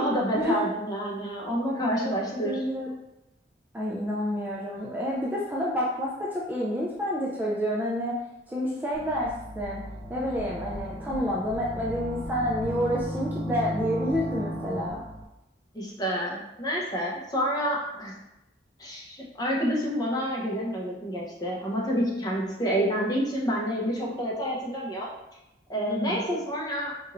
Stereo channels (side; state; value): both; normal; correlation 0.47